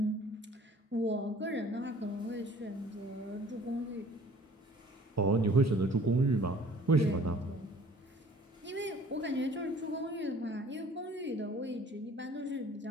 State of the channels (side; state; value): both; normal; correlation 0.51